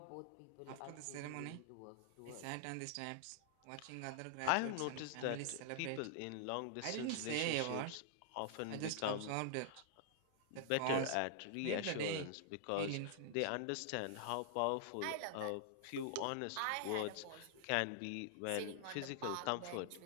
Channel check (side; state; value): both; different; correlation -0.01